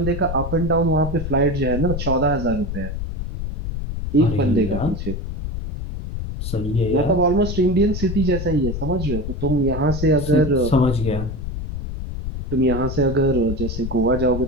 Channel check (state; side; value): noise; left; rumble, 5 dB below the sound